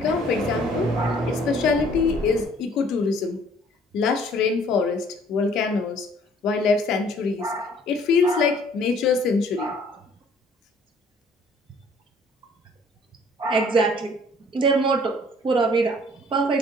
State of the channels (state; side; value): normal; both; correlation 0.57